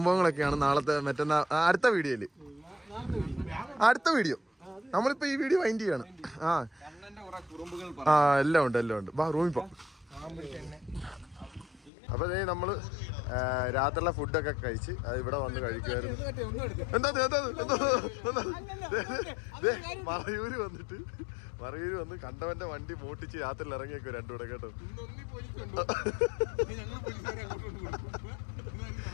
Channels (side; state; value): right; drops out; at 11.9 s